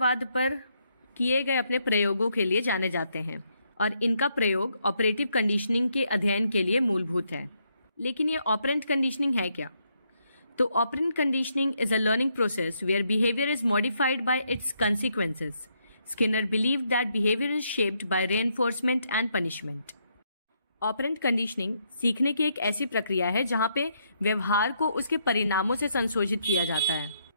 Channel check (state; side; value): inverted; both; correlation -0.76